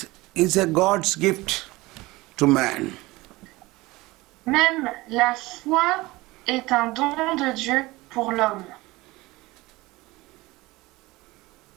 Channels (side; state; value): left; quieter; 20.8 dB